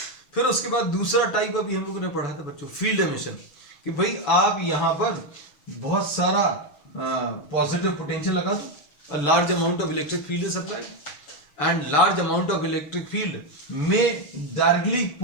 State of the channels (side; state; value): right; late; 7.0 ms